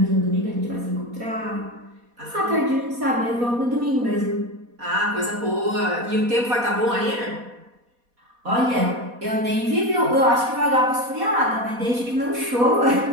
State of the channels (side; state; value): left; late; 4.1 ms